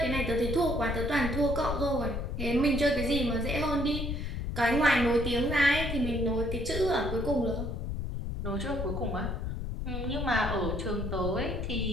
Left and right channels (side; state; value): left; noise; rumble, 3 dB below the sound